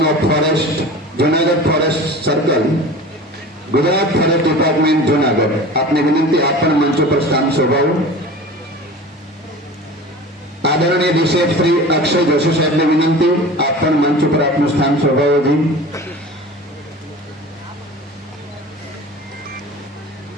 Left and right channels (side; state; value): both; normal; correlation 0.37